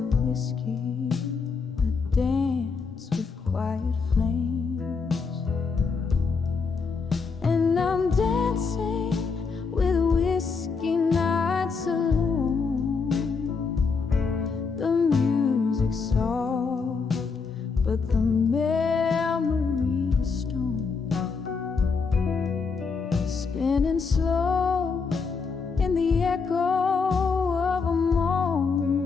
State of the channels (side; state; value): right; quieter; 5.0 dB